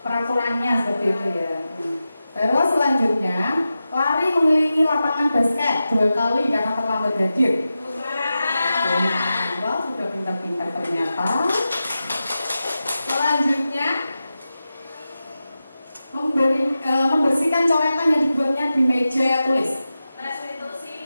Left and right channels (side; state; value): both; inverted; correlation -0.92